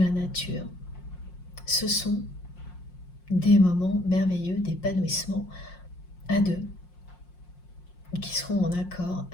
nature. Ce sont des moments merveilleux d'épanouissement à deux, qui seront en accord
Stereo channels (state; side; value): late; right; 5.6 ms